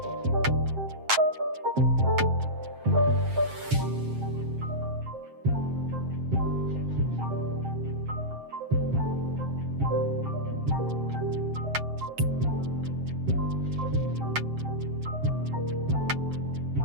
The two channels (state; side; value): late; left; 7.6 ms